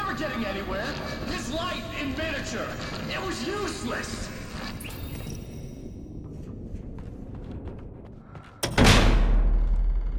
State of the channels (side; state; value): both; identical; correlation 1.00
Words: getting anywhere. His life in miniature. It was useless.